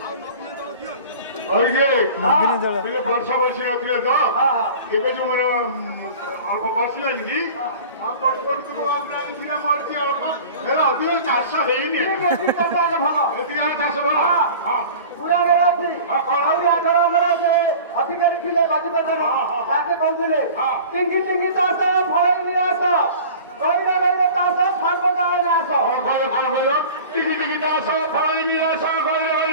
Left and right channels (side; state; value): both; inverted; correlation -0.40